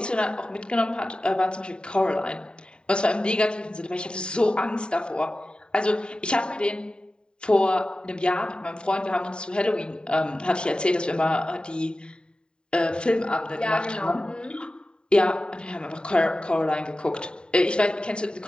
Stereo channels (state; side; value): late; right; 0.050 ms